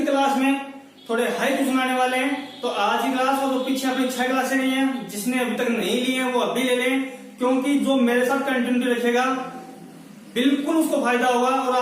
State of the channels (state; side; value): identical; both; correlation 1.00